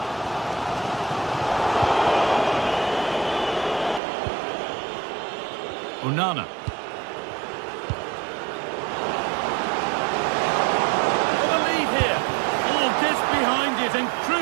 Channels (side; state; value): left; drops out; at 4.0 s